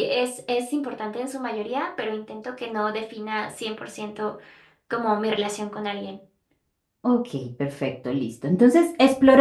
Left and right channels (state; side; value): identical; both; correlation 1.00